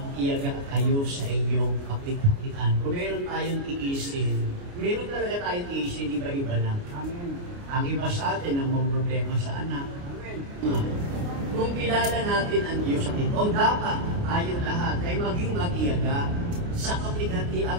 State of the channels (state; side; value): late; left; 29 ms